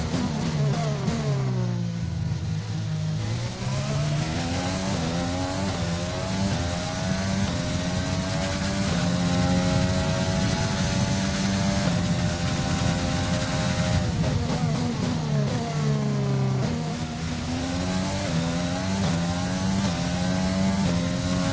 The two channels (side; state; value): both; identical; correlation 1.00